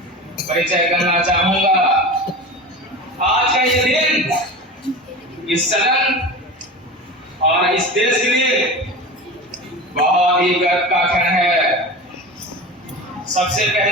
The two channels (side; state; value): both; normal; correlation 0.30